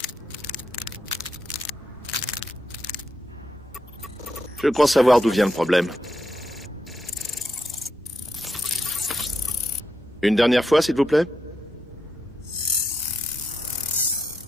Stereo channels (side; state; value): both; normal; correlation 0.82